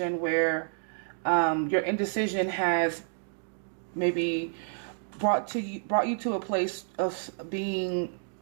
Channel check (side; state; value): left; silent; 58 dB below the other